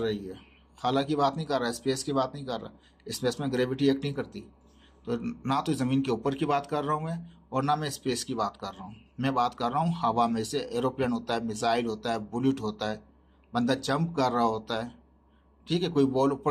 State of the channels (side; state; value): both; identical; correlation 1.00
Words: है। खाला की बात नहीं कर रहा, स्पेस की बात नहीं कर रहा, स्पेस में ग्रेविटी एक्ट नहीं करती। तो ना तो ज़मीन के ऊपर की बात कर रहा हूँ मैं, और ना मैं स्पेस की बात कर रहा हूँ। मैं बात कर रहा हूँ हवा में से। एरोप्लेन होता है, मिसाइल होता है, बुलेट होता है, बंदा जंप कर रहा होता है, ठीक है, कोई बॉल